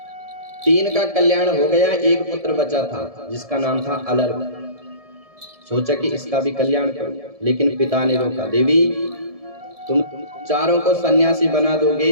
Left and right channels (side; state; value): left; late; 1.7 ms